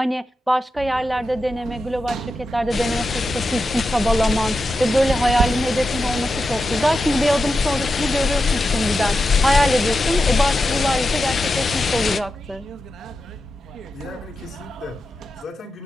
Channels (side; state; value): both; normal; correlation 0.89